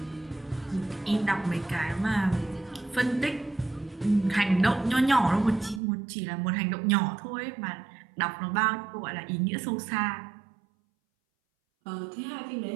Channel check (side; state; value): left; drops out; at 5.8 s